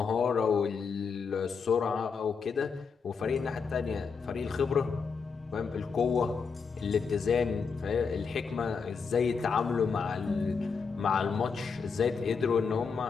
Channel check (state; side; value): quieter; right; 5.5 dB